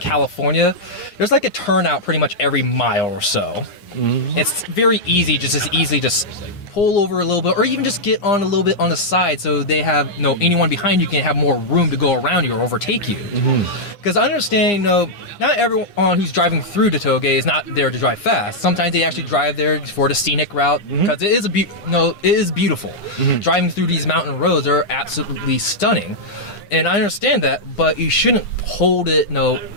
there's like a turnout pretty much every mile or so. Mm-hmm. It's very easy, just pull over a little bit, or even just get on a little bit on the side, so they have, you know, anyone behind you can have more room to go around you or overtake you. Because I understand, you know, not everyone who's driving through the tollgate is not there to drive fast. Sometimes they actually drive there for the scenic route, because it is beautiful. Driving through these mountain roads are absolutely stunning, and I understand that, but you shouldn't hold it, you know,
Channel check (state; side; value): late; right; 9.8 ms